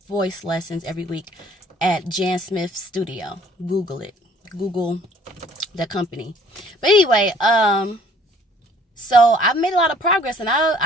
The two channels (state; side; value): normal; both; correlation 0.56